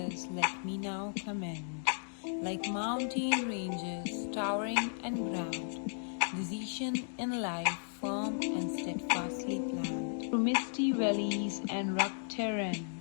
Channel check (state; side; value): silent; right; digital silence